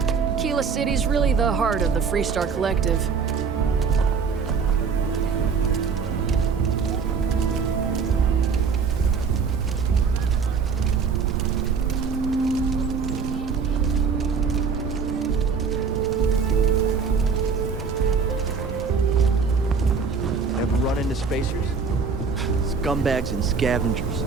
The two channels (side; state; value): left; quieter; 5.6 dB